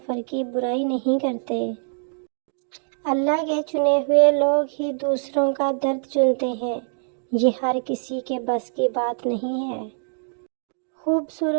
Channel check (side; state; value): left; silent; digital silence